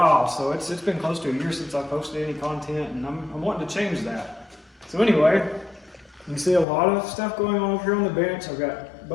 so it's been close to a year since I posted any content, and I'm wanting to change that. So anyway, you can see a lot of stuff going on over here on the bench. I've got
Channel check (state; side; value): drops out; right; at 6.7 s